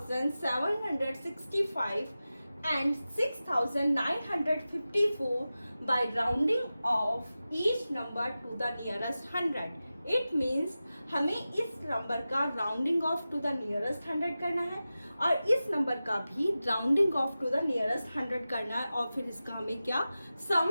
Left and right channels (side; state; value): both; inverted; correlation -0.95